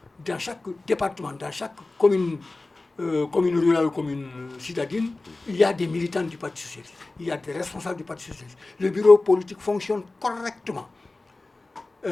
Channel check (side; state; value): right; quieter; 3.2 dB